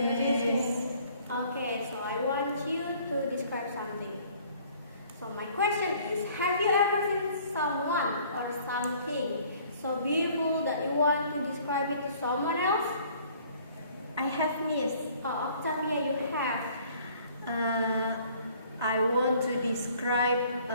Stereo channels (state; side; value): inverted; both; correlation -0.56